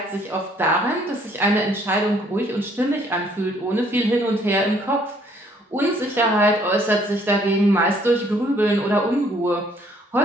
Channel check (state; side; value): normal; both; correlation 0.63